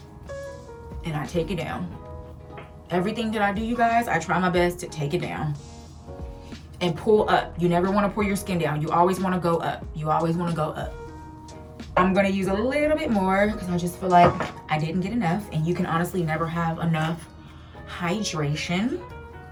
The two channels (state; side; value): identical; both; correlation 1.00